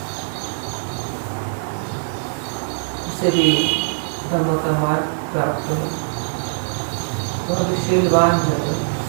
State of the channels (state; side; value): silent; left; digital silence